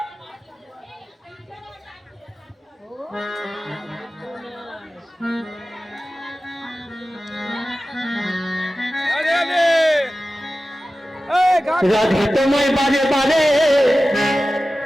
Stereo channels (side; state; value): both; normal; correlation 0.95